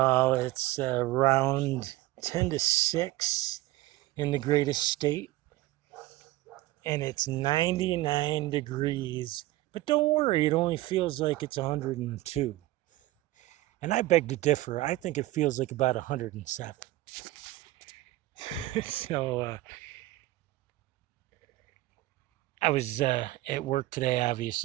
It's around 10 to 6 in the greatest state, and it's 99 degrees. But don't worry, it only feels like it's 102. And I beg to differ. I think it feels like about 107. So I was at work today,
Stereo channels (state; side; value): quieter; left; 17.5 dB